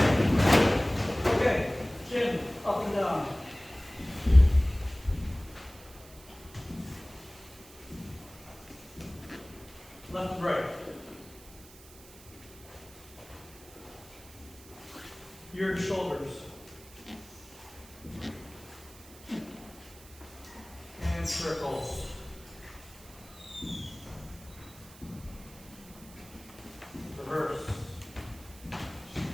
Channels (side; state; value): right; noise; hiss, 20 dB below the sound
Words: Left and right. Your shoulders. And circles. Reverse.